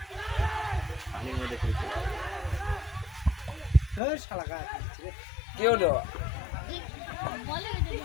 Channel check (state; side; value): drops out; right; at 4.0 s